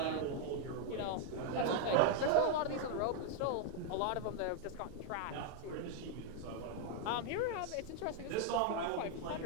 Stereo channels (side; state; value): both; different; correlation 0.00